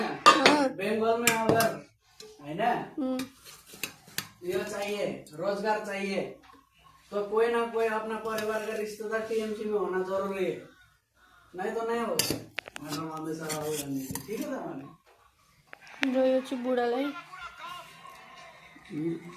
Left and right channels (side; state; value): both; identical; correlation 1.00